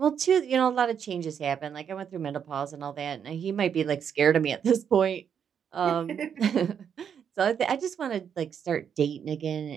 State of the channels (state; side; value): quieter; left; 7.9 dB